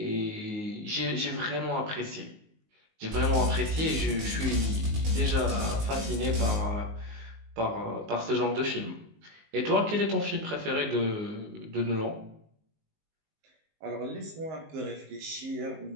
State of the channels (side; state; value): left; late; 19 ms